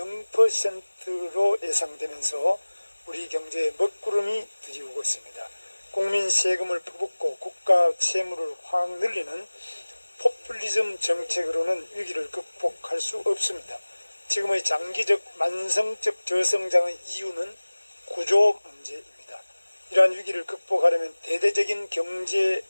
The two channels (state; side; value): inverted; both; correlation -1.00